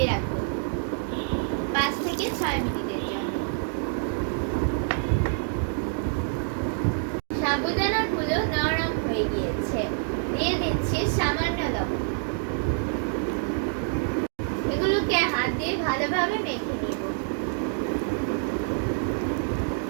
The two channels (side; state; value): left; silent; 60 dB below the other